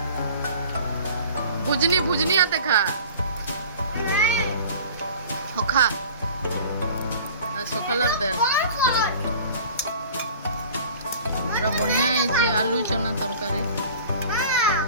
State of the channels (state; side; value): inverted; both; correlation -0.44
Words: ଭୁଜନି ଆତେ ଖା ଖା ସକାଳର ଦେ ପୁରା ବଢ଼ିଆ ହେଇଛି ଆଲୁ ଚନା ତରକାରୀ